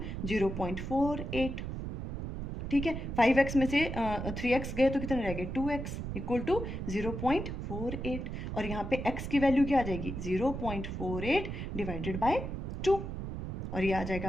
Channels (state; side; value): noise; right; rumble, 5 dB below the sound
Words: 0.48, ठीक है। 5x में से 3x गए तो कितने रह गए, 2x इक्वल टू 0.48, और यहाँ पे x की वैल्यू क्या आ जाएगी, 0.48 डिवाइडेड बाय 2, और ये आ जाएगा